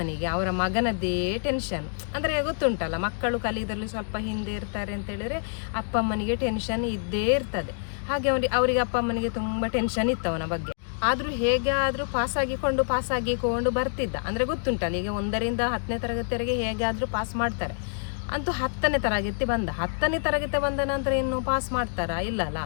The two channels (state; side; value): silent; right; digital silence